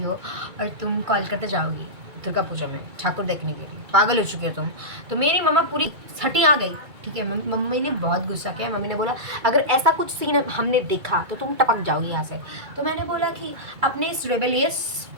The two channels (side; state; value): left; late; 2.3 ms